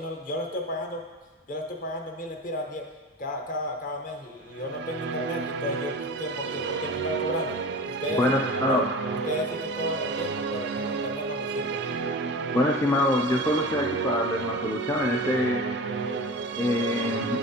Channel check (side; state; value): both; normal; correlation 0.33